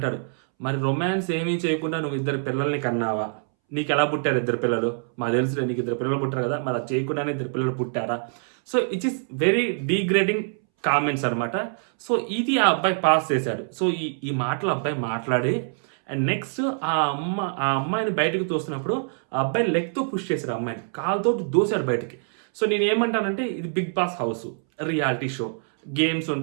మరి రొమాన్స్ ఏమీ చేయకుండా నువ్వు 2 పిల్లల్ని కన్నావా, నీకు ఎలా పుట్టారు 2 పిల్లలు, మాకు తెలుసులే నీకు 2 పిల్లలు పుట్టారు కదా, మరి అది చేయకుండానే 2 పిల్లలు పుట్టారా. So it is very degrading comments అనమాట. సో ఇది ఆ అబ్బాయి పాస్ చేశాడు. సో ఈ మాటలు అబ్బాయి మాట్లాడి అండ్ నెక్స్ట్ ఆ అమ్మాయిని బయటకు తోస్తున్నప్పుడు ఆ అబ్బాయి లెగ్తో పుష్ చేశాడు, అమ్మాయిని కాలుతో దోశాడు బయటికి. సో నేను ఏమంటానంటే, ఇది Big Boss house, reality show, games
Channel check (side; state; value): left; silent; 62 dB below the other